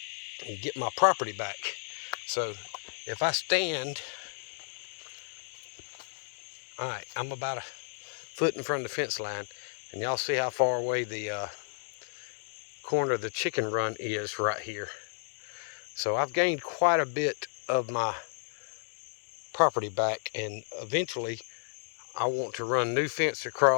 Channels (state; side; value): silent; right; digital silence